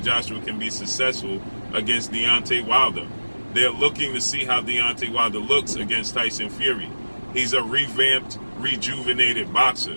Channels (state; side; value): inverted; both; correlation -1.00